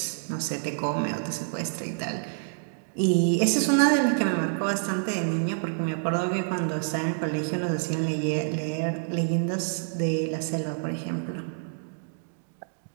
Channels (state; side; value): silent; left; digital silence